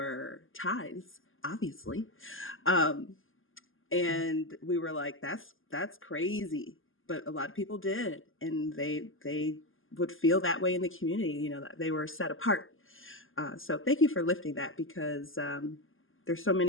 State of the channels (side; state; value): right; late; 0.59 ms